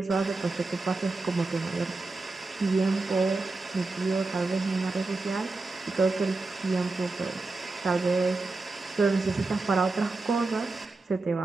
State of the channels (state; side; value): quieter; left; 3.5 dB